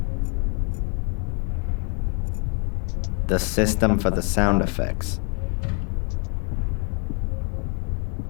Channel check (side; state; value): right; quieter; 37.2 dB